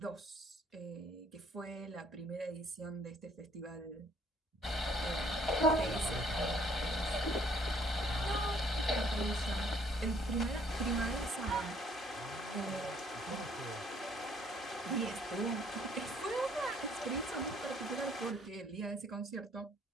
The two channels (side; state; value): both; normal; correlation 0.63